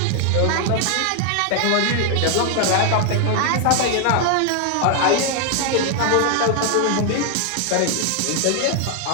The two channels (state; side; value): different; both; correlation 0.00